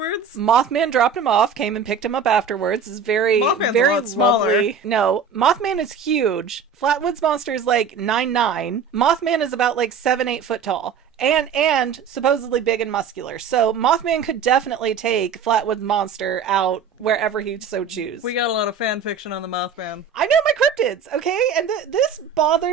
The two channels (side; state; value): left; quieter; 6.0 dB